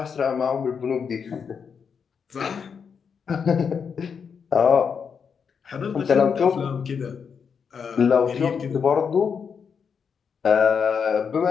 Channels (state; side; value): quieter; right; 6.4 dB